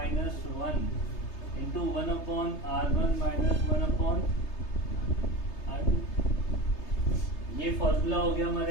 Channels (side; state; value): right; late; 3.3 ms